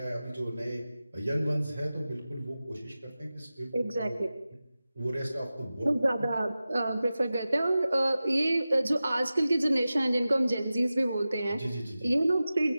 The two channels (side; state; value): both; inverted; correlation -0.95